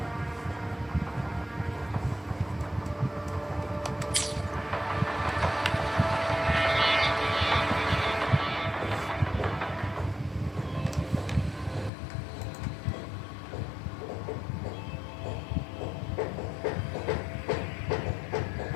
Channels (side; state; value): right; drops out; at 11.9 s